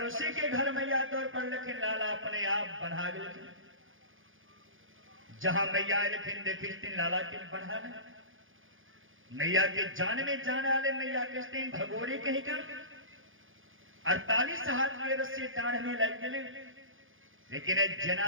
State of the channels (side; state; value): left; late; 0.58 ms